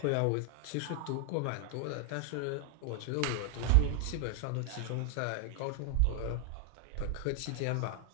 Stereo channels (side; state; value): both; different; correlation 0.00